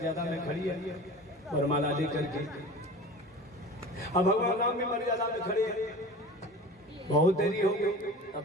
में खड़ी है वरमाला लेकर के। अब भगवान राम भी मर्यादा में खड़े हैं। बहुत देरी हो गई, तब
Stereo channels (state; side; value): normal; both; correlation 0.37